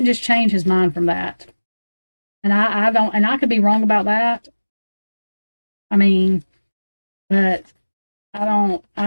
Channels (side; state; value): both; inverted; correlation -1.00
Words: just change his mind from that, and I don't, and I could be wrong about that. I mean, but I don't.